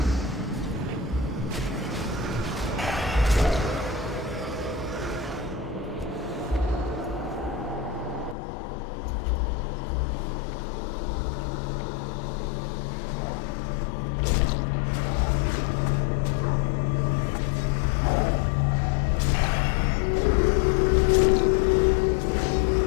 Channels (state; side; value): drops out; right; at 8.3 s